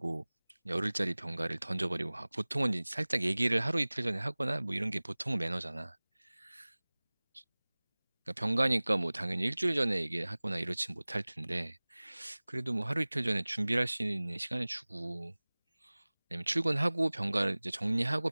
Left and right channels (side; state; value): both; inverted; correlation -1.00